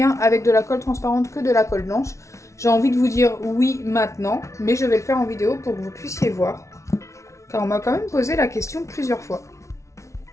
avec de la colle transparente que de la colle blanche. J'ai envie de vous dire oui maintenant, mais je vais le faire en vidéo pour que vous puissiez voir, car on m'a quand même posé la question plusieurs fois.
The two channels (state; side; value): late; right; 0.14 ms